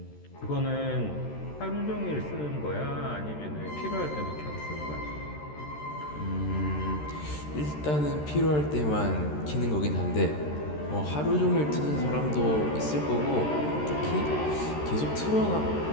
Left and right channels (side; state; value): right; late; 13 ms